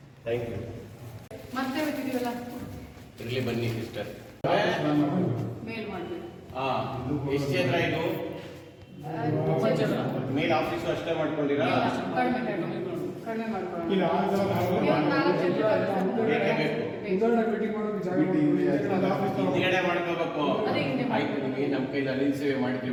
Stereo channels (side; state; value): both; identical; correlation 1.00